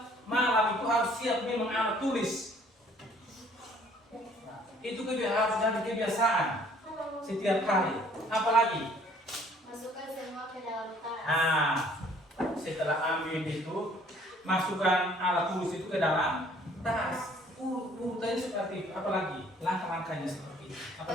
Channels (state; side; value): normal; both; correlation 0.58